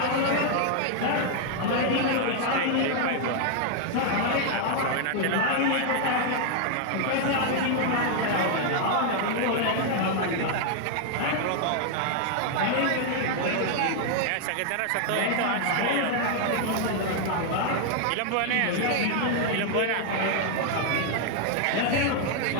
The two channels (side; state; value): both; different; correlation 0.00